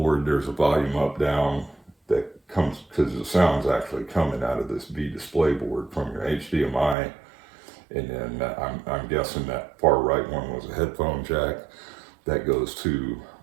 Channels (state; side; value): drops out; left; at 7.0 s